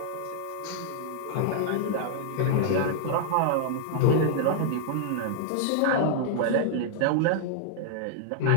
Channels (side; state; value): both; different; correlation -0.01